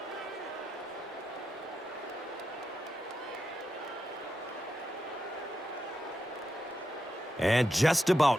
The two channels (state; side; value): normal; both; correlation 0.87